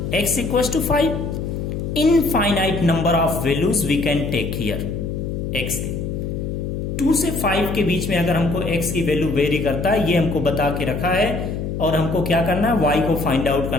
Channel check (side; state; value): left; noise; hum, 4 dB below the sound